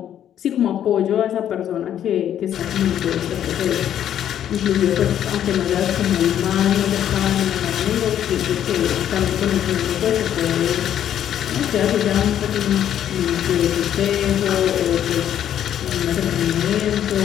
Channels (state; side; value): quieter; right; 10.4 dB